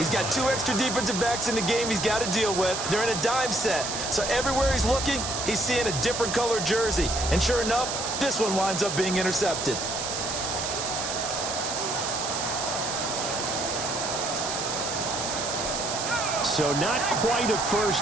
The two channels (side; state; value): right; noise; hiss, 3 dB below the sound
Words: got 2 extra defensive backs in the game he's got to deal with. They're in a dime set. So everywhere he's looking, he's seeing a different color jersey. And sure enough, this one winds up being intercepted. So not quite a